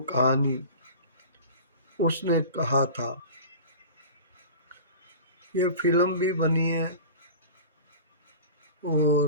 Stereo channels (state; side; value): inverted; both; correlation -0.37